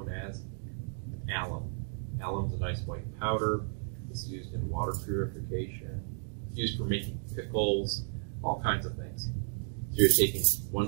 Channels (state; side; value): silent; left; digital silence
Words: as alum. Alum's a nice white powder. It's used in water purification. It's used for making pickles, all kinds of things. So you're taking one